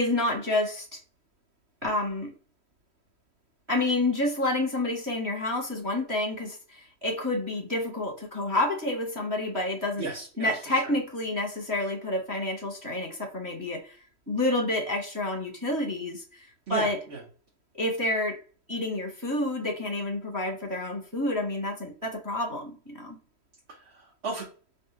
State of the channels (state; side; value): late; left; 3.1 ms